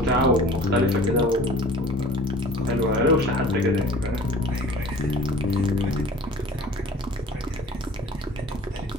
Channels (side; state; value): both; normal; correlation 0.45